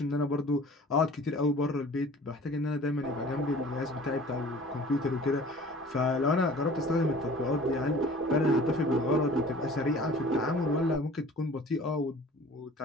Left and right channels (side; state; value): both; normal; correlation 0.46